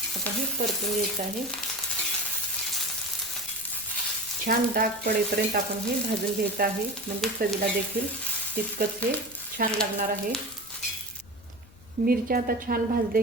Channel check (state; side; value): noise; left; rumble, 23 dB below the sound